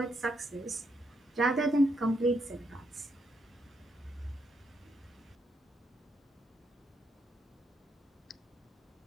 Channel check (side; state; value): both; normal; correlation 0.77